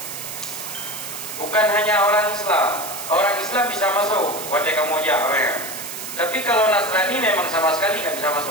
Bukan hanya orang Islam bisa masuk. Wadai kamu aja orang. Tapi kalau Nasrani memang sama sekali nggak bisa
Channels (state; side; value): noise; right; hiss, 8 dB below the sound